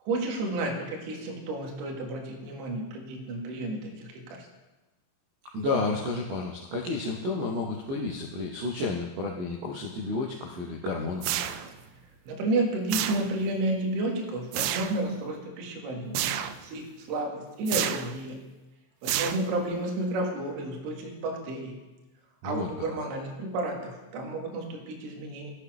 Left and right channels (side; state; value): left; late; 23 ms